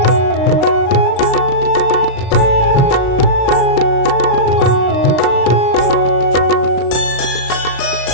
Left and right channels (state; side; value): late; right; 36 ms